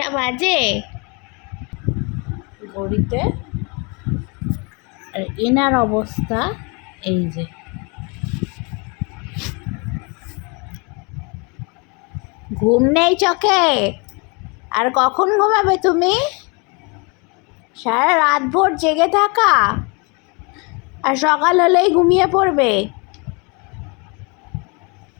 বাজে ঘড়িতে? আর এনার অবস্থা এই যে, ঘুম নেই চোখে। আর কখন ঘুমাবে তুমি? সারা রাত ভোর জেগে থাকা, আর সকাল হলেই ঘুমিয়ে পড়বে।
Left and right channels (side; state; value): right; quieter; 31.4 dB